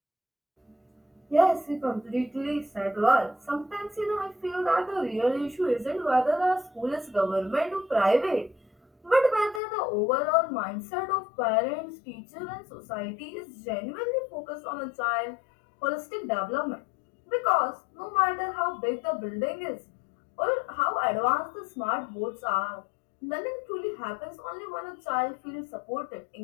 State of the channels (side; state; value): right; drops out; at 9.6 s